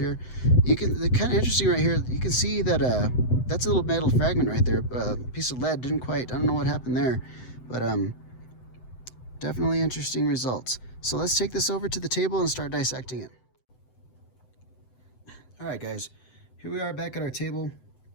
You can, the kind of interesting right here, you can see that that's a little metal fragment right there. A piece of lead didn't quite, I don't know what happened there, but definitely interesting results. So let's take this over to the table and start dissecting it. All right guys, here we are back at our table,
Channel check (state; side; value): late; right; 7.9 ms